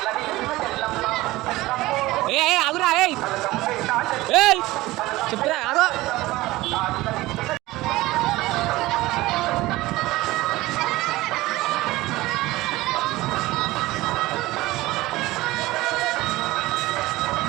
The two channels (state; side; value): quieter; left; 18.7 dB